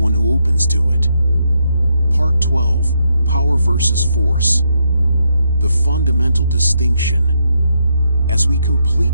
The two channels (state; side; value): inverted; both; correlation -0.79